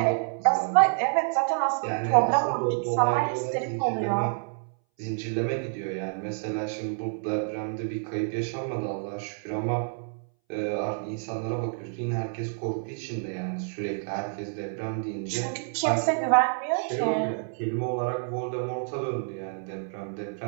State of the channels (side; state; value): left; silent; 59 dB below the other